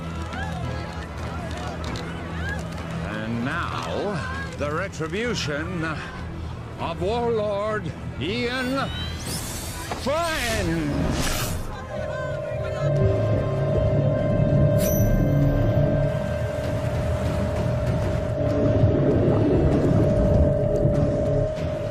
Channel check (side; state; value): both; identical; correlation 1.00